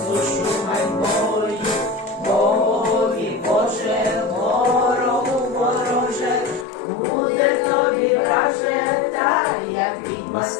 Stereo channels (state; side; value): drops out; right; at 6.7 s